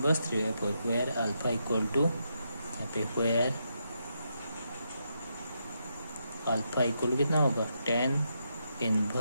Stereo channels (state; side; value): inverted; both; correlation -0.82